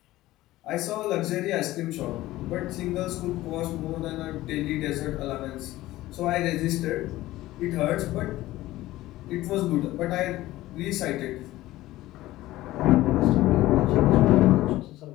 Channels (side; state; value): right; quieter; 16.6 dB